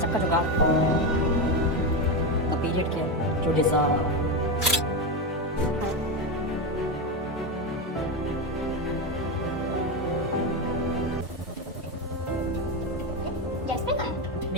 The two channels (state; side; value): normal; both; correlation 0.13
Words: का जुगाड़। The period care you deserve. Jasmine कहाँ है?